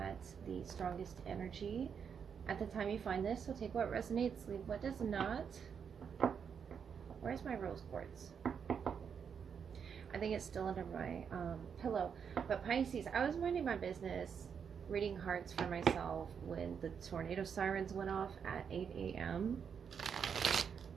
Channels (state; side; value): quieter; left; 7.0 dB